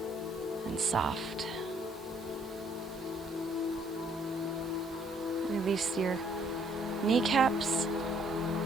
and soft. Release your kneecaps.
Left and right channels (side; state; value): both; normal; correlation 0.65